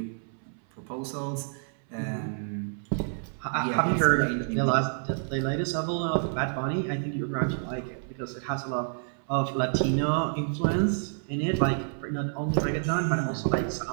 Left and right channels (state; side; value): silent; left; 59 dB below the other